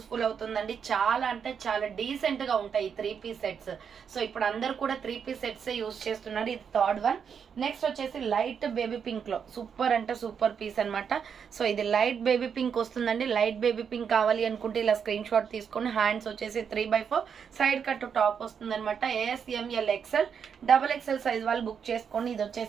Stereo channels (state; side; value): quieter; left; 7.1 dB